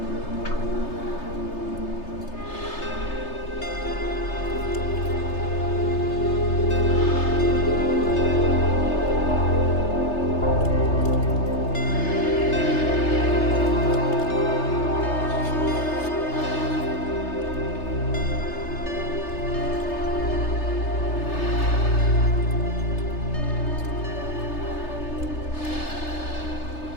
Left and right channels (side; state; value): right; late; 3.3 ms